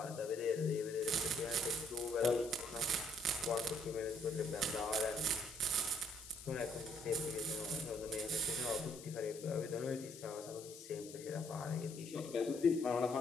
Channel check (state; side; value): noise; left; hiss, 15 dB below the sound